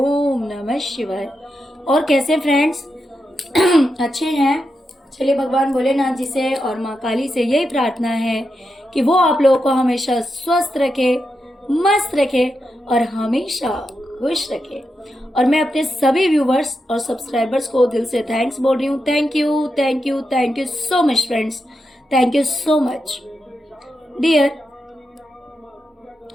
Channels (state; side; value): normal; both; correlation 0.87